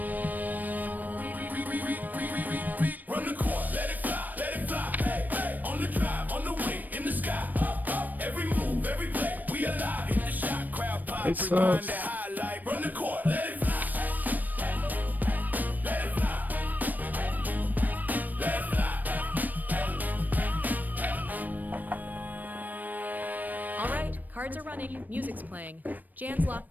Run the court, let it fly, let it fly. Hey, hey. On the drive, on the wing, in the sky. Every move, every play, we alive. Hit the shot, crowd pop, rewind that highlight. Run the court, let it fly. Let it fly. Let it fly. All right, cards are running, music's playing. Jan's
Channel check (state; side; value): late; left; 0.086 ms